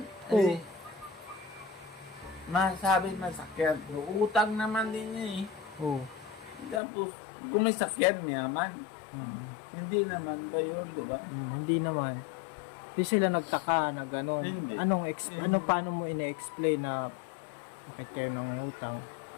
Oo. Masabi masakyan. Utang naman din niya eh. Oo. Tapos, kung may sakyan naman, hindi naman ba yun, di ba? Hindi naman. Di sila nagtaka na gano'n. Hindi. Paano mo ine-explain na bakit kayo nangungutang?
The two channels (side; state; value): right; drops out; at 6.8 s